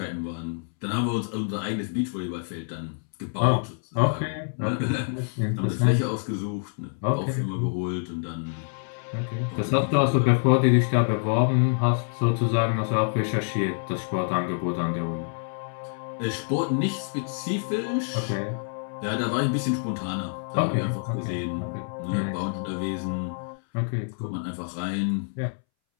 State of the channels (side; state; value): right; silent; 60 dB below the other